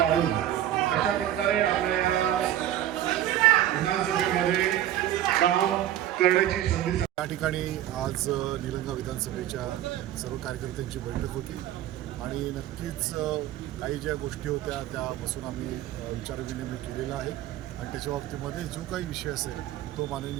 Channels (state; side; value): quieter; left; 12.4 dB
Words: कशा प्रकारे आपल्या विधानसभेमध्ये काम करण्याची संधी. या ठिकाणी आज निलंगा विधानसभेच्या सर्व कार्यकर्त्यांची बैठक होती आणि नक्कीच काही ज्या गोष्टी होत्या त्या बसून आम्ही विचारविनिमय केलेला आहे आणि त्याच्या बाबतीमध्ये जो काही विषय असेल तो